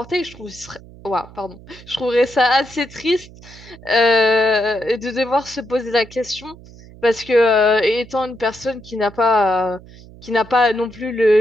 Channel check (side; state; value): right; noise; hum, 20 dB below the sound